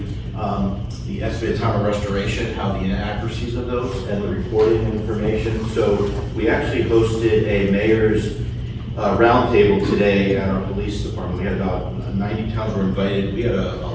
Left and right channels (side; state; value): both; identical; correlation 1.00